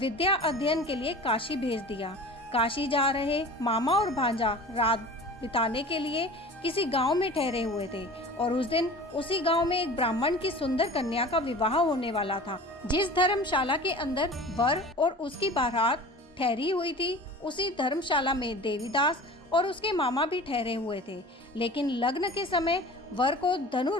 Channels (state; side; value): normal; both; correlation 0.39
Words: अध्ययन के लिए काशी भेज दिया। काशी जा रहे मामा और भांजा रात बिताने के लिए किसी गांव में ठहरे हुए थे और उस दिन उसी गांव में एक ब्राह्मण की सुंदर कन्या का विवाह होने वाला था। जिस धर्मशाला के अंदर वर और उसकी बारात ठहरी हुई थी, उसी धर्मशाला में देवीदास और उसके मामा भी ठहरे हुए थे। लेकिन लग्न के समय वर को